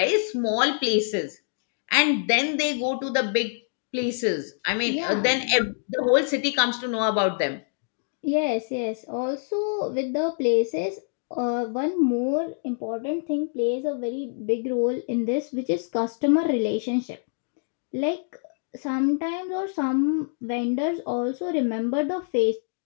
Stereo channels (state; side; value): silent; right; digital silence